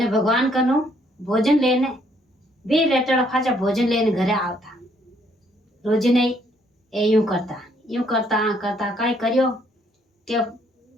भगवान कनु भोजन लेने भी रेटड़ा फाचा भोजन लेने घरे आवता। रोज नहीं ए यूं करता करता काय करियो के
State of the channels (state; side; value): normal; both; correlation 0.68